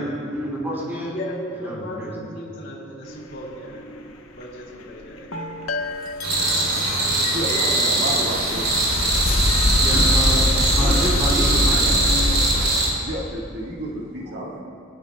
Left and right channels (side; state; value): both; normal; correlation 0.41